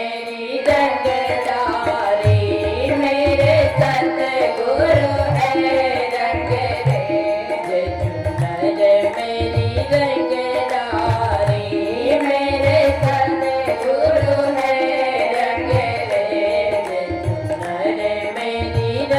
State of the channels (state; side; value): identical; both; correlation 1.00